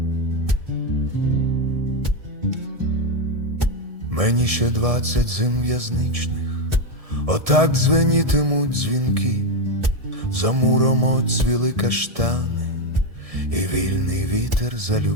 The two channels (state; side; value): late; left; 1.7 ms